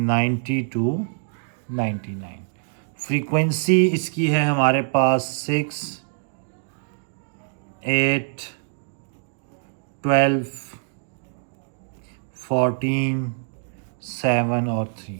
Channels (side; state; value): left; silent; digital silence